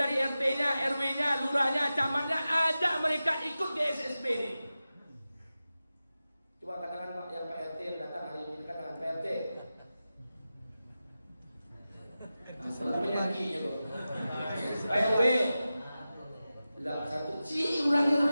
RT-nya, RW-nya, lurahnya, camatnya, ajak mereka ikut di SSB ini. Coba katakan Pak, yang Pak RT yang datang hari ini, katakan Pak RT. Nah, penyakitnya kok. Pak RW. Lah satu, si orangnya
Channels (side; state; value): both; inverted; correlation -0.94